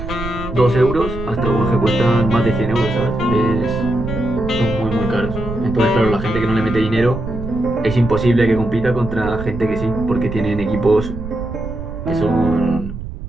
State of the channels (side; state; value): right; noise; rumble, 9 dB below the sound